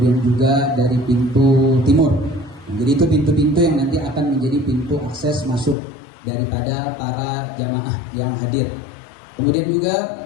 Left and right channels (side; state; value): right; drops out; at 5.8 s